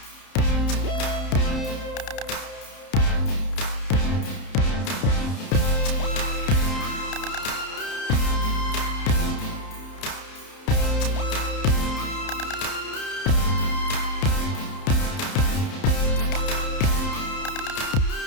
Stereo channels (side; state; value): right; late; 31 ms